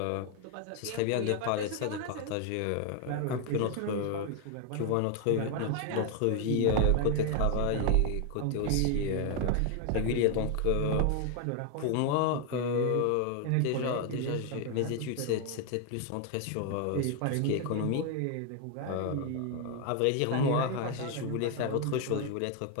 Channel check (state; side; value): different; both; correlation 0.00